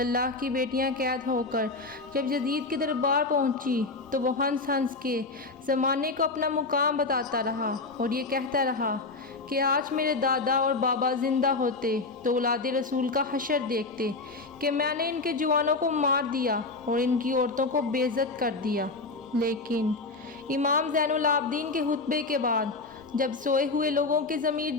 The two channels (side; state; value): right; quieter; 3.6 dB